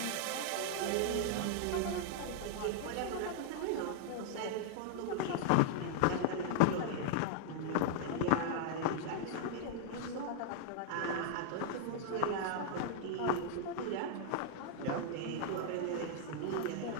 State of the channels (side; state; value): both; different; correlation 0.00